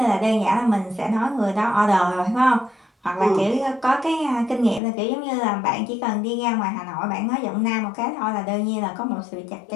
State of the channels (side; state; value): right; drops out; at 4.8 s